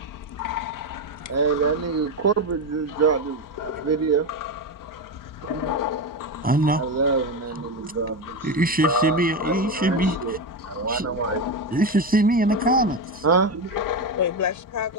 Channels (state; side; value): normal; both; correlation 0.14